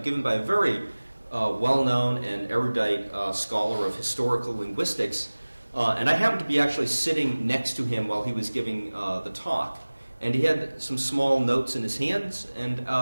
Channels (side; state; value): both; inverted; correlation -1.00